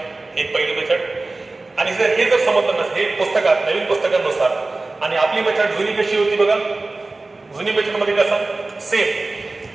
एक पहिली मेथड आणि जर हे जर समजलं नसतं हे पुस्तकात नवीन पुस्तकांनुसार आणि आपली मेथड जुनी कशी होती बघा जुनी मेथड मध्ये कसं सेम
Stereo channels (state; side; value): quieter; left; 3.2 dB